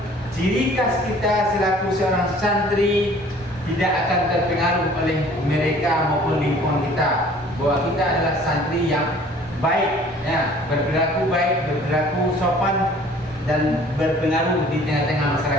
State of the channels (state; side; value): normal; both; correlation 0.52